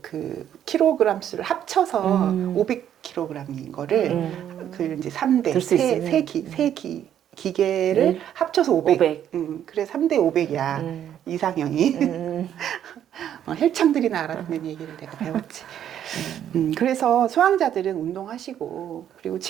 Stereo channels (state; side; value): quieter; left; 10.2 dB